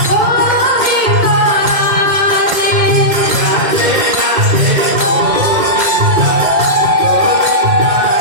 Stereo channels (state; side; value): late; left; 2.1 ms